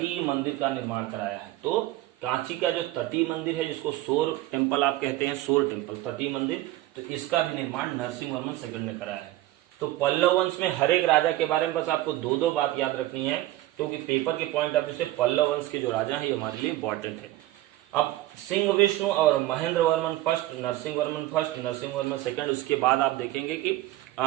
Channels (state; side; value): quieter; left; 16.1 dB